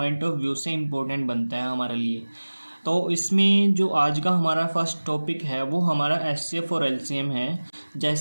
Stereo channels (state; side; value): inverted; both; correlation -1.00